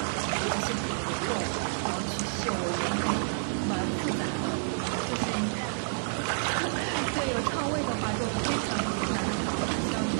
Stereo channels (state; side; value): silent; left; digital silence